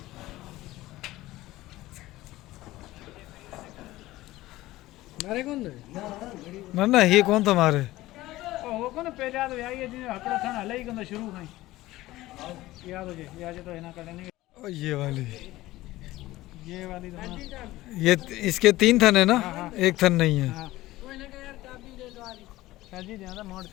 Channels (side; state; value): right; quieter; 17.2 dB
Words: मारे कौन ना ना ये कौन था मारे? वो कौन पहले याद आई है जी हकड़ा था हले ही कंदा शुरू खाई याद हो जे याद तो है ना करने और ये वाली तो ना ये इसके 3 थन है ना, एक थन नहीं है। हाँ जी ज्यादा मोड़